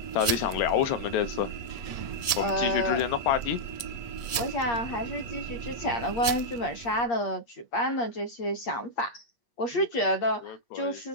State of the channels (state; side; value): late; right; 8.0 ms